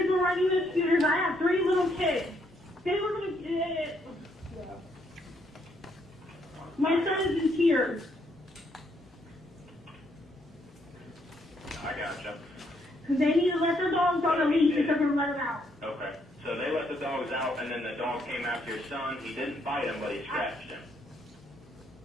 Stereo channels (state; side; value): normal; both; correlation 0.73